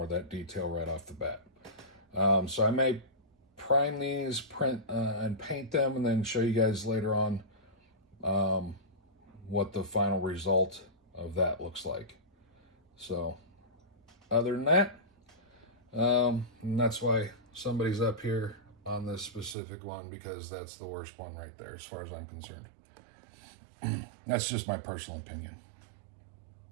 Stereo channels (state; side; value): drops out; left; at 19.6 s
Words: of that detail right off the bat. So I may prime these, print and paint them, and then show you guys later on what the final result of that looks like. So other than that, and that's why somebody's up here on this specific one, because that's the worst one right there as far as I'm concerned. That's just my personal opinion,